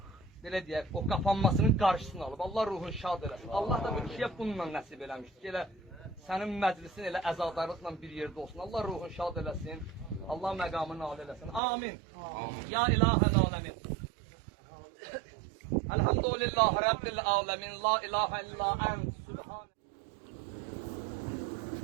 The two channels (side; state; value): left; drops out; at 11.6 s